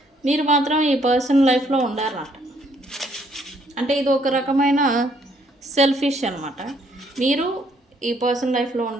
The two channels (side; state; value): both; normal; correlation 0.67